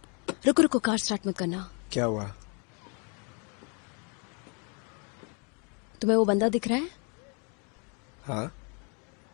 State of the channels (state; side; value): quieter; right; 35.7 dB